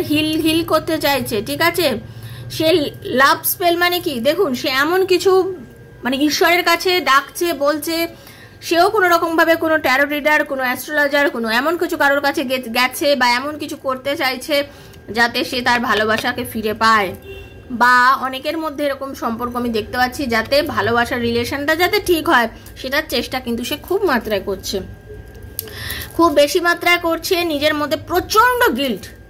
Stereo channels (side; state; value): both; identical; correlation 1.00